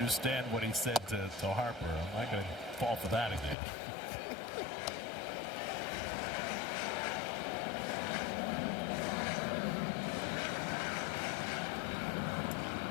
what he said to Harper. I'm not going to fall for that again.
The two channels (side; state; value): right; drops out; at 3.6 s